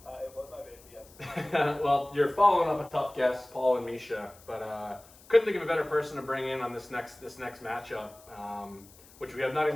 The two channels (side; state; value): left; noise; hiss, 24 dB below the sound